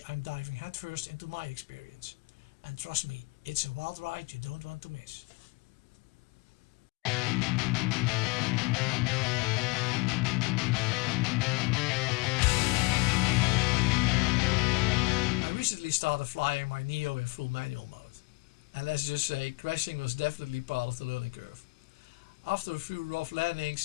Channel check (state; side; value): quieter; right; 26.5 dB